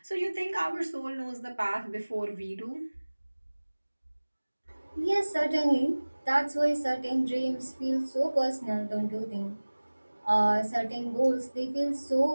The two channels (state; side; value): inverted; both; correlation -1.00